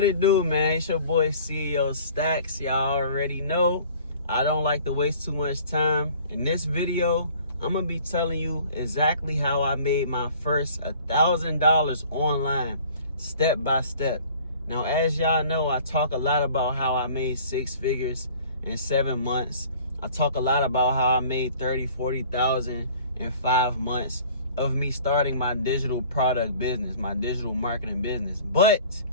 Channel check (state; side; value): inverted; both; correlation -0.49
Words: it do, man? It's your boy CEO Stacks. Y'all already know I don't like to waste too much time. In this video, I'm gonna be telling you exactly how I made my first $1,000 online, step by step. Now, as y'all know, I talk a lot about how I made 6 figures in 7 months. I talk a lot about how I made 30, 40,000 in 5 months of me starting my digital product business, my digital marketing business. But